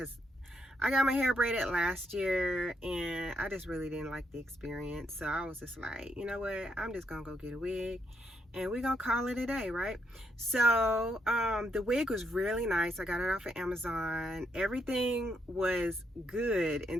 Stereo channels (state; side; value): normal; both; correlation 0.77